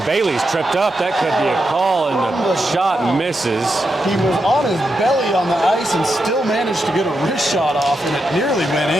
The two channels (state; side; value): normal; both; correlation 0.85